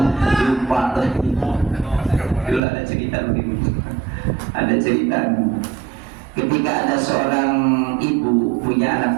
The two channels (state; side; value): drops out; left; at 2.6 s